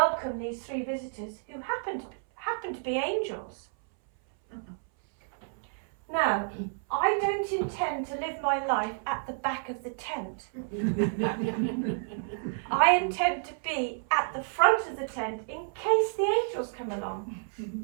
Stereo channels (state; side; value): silent; left; 58 dB below the other